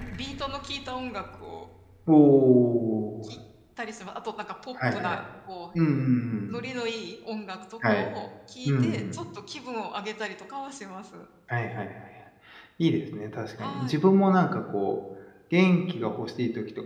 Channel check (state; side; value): identical; both; correlation 1.00